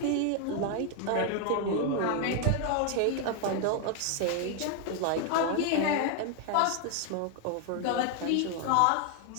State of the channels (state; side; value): different; both; correlation 0.00